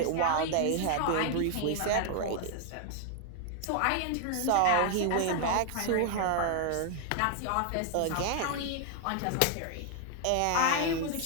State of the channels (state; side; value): different; both; correlation 0.00